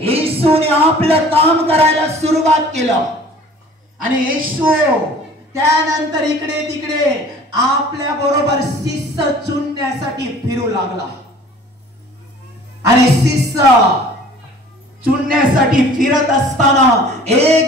येशूने आपलं काम करायला सुरुवात केलं. आणि येशू त्यानंतर इकडे तिकडे आपल्या बरोबर शिष्य चुनण्यासाठी फिरू लागला. आणि शिष्य चुनण्यासाठी फिरत असताना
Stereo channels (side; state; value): both; normal; correlation 0.48